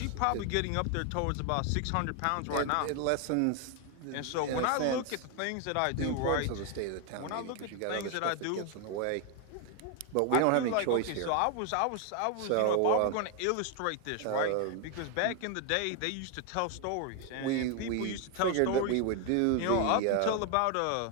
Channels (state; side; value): different; both; correlation 0.01